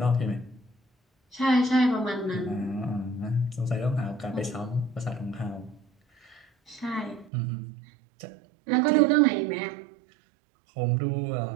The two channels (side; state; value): left; drops out; at 7.3 s